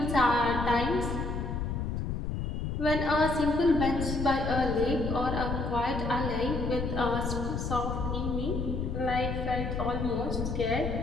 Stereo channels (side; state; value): left; noise; rumble, 2 dB below the sound